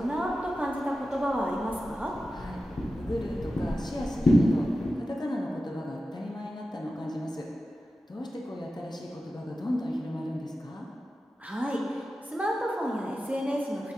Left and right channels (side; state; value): both; normal; correlation 0.93